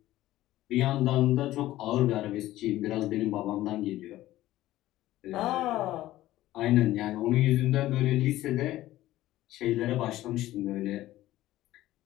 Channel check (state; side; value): quieter; right; 15.4 dB